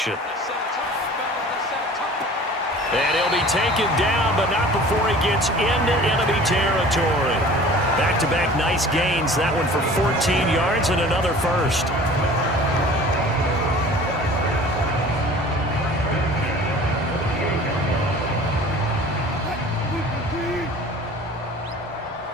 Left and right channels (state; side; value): normal; both; correlation 0.45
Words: And he'll be taken down, but not before he gets into enemy territory. Back-to-back nice gains. That one for 14 yards and another first.